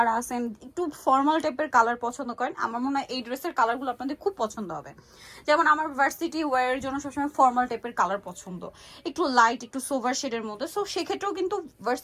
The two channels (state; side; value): identical; both; correlation 1.00